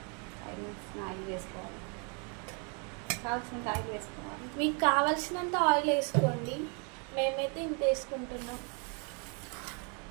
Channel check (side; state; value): left; quieter; 36.0 dB